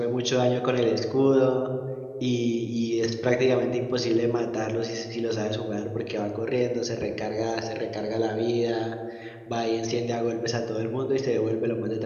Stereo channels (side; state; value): both; identical; correlation 1.00